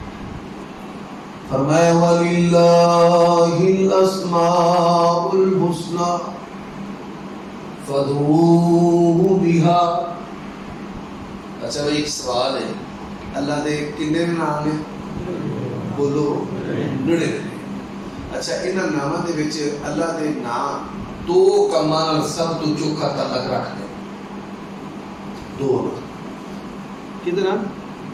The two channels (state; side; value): identical; both; correlation 1.00